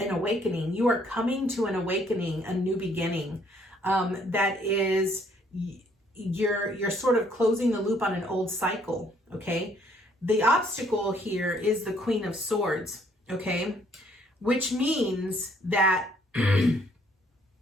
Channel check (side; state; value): both; normal; correlation 0.65